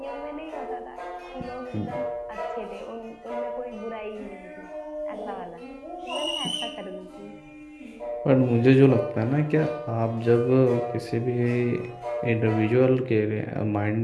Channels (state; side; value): identical; both; correlation 1.00